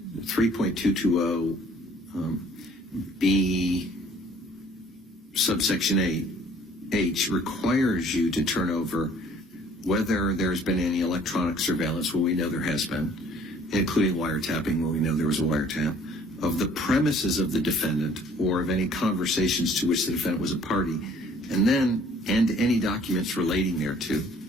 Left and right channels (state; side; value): normal; both; correlation 0.56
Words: B subsection 8H requires you to turn over whether there's been any electronic surveillance. Well, we know there has been, including wiretapping. Well, we know there was a wiretap of the premises of the defendant or of any conversations to which the defendant was a party, and any documents relating thereto.